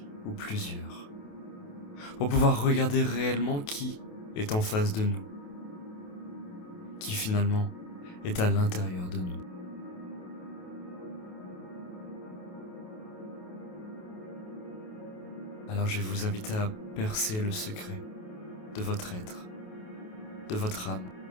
ou plusieurs, pour pouvoir regarder réellement qui est en face de nous, qui finalement est à l'intérieur de nous. Alors je vais vous inviter à percer le secret de votre être, de votre âme.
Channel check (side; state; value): right; late; 28 ms